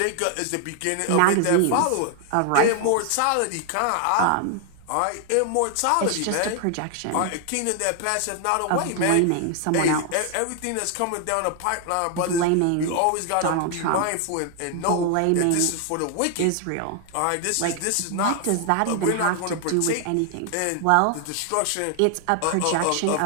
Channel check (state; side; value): different; both; correlation 0.00